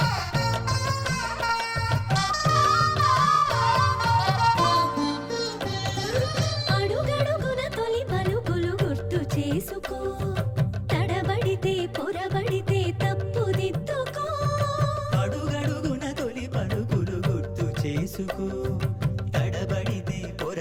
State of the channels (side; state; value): both; identical; correlation 1.00